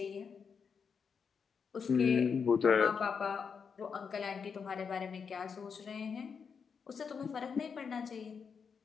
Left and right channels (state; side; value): quieter; right; 6.2 dB